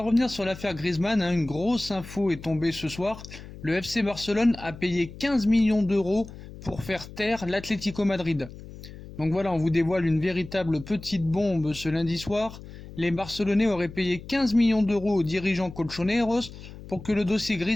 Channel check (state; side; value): noise; left; hum, 15 dB below the sound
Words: revenir sur l'affaire Griezmann, une grosse info est tombée ce soir. Le FC Barcelone a payé 15 millions d'euros pour faire taire l'Atlético Madrid. Donc voilà, on vous dévoile une véritable petite bombe ce lundi soir. Les Barcelonais auraient payé 15 millions d'euros aux dirigeants colchoneros pour que le dossier